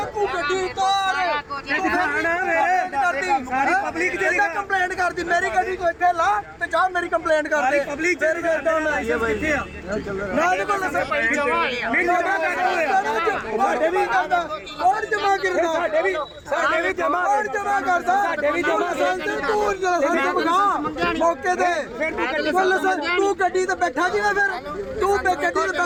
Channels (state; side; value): identical; both; correlation 1.00